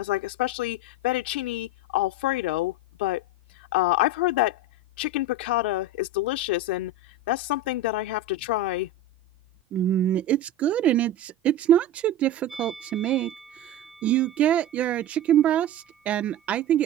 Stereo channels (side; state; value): both; normal; correlation 0.24